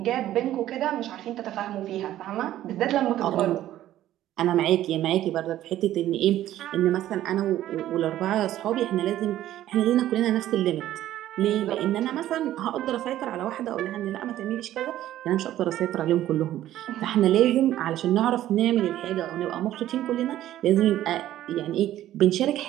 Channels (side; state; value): left; quieter; 13.2 dB